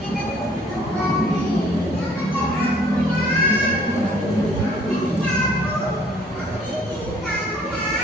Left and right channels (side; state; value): both; normal; correlation 0.58